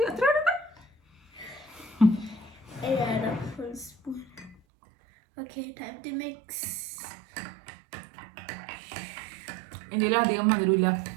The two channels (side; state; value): left; drops out; at 4.6 s